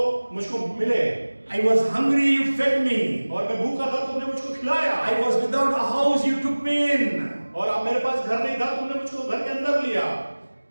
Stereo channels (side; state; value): both; inverted; correlation -1.00